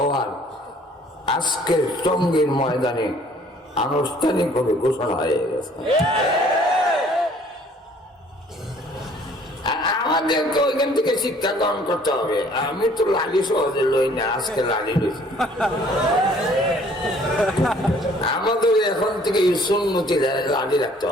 আজকের টঙ্গীর ময়দানে আনুষ্ঠানিকভাবে ঘোষণা হয়ে গেছে। আমাদেরকে ওইখান থেকে শিক্ষা গ্রহণ করতে হবে। আমি তো লালি সহজে লই না, আজকে লালি লইছি। আমাদের এখন থেকে সুন্নতি লালি রাখতে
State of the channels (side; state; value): both; normal; correlation 0.57